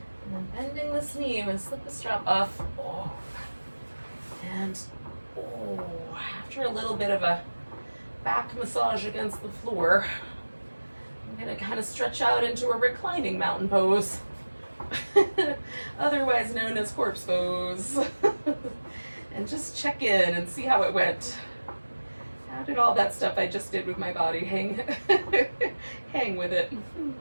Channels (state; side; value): inverted; both; correlation -1.00